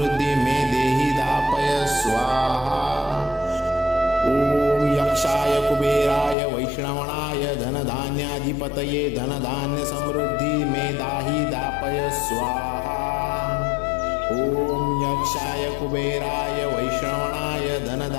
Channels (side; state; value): right; drops out; at 6.4 s